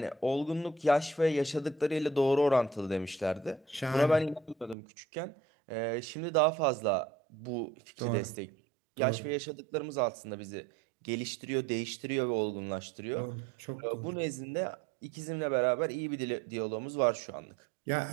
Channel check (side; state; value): left; drops out; at 4.8 s